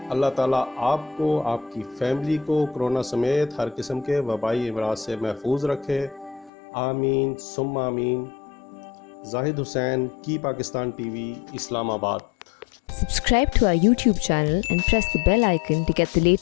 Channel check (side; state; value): right; drops out; at 6.5 s